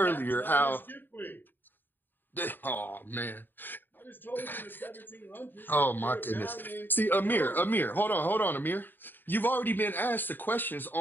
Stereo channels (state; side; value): late; right; 0.093 ms